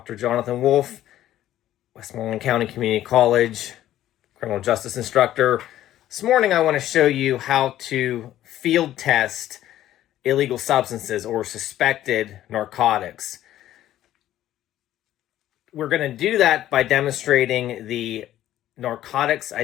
Jonathan Wolf, Westmoreland County Community College, criminal justice instructor. This morning, I want to show you how to field test illegal substances or suspected narcotics. We're going to do that by demonstrating the narcotics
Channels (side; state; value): right; quieter; 13.0 dB